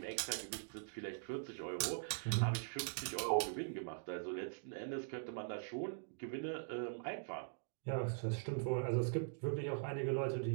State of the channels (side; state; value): left; silent; digital silence